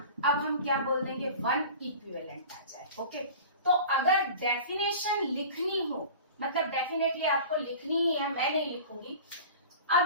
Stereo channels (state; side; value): inverted; both; correlation -0.38